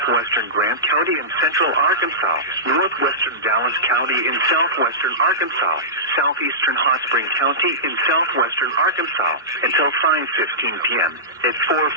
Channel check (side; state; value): both; normal; correlation -0.19